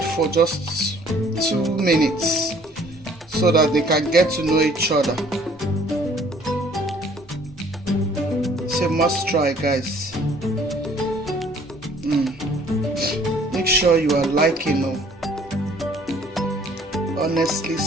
for just 2 minutes so that they can get to know each other. It's a must try, guys. Make sure you are liking. Honestly,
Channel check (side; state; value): both; normal; correlation 0.57